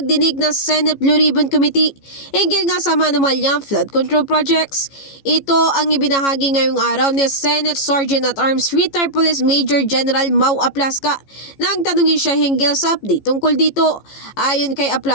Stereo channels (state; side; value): late; right; 15 ms